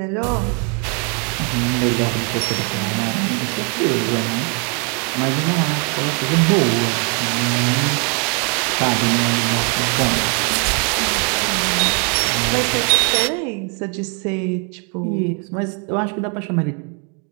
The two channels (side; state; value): left; quieter; 37.4 dB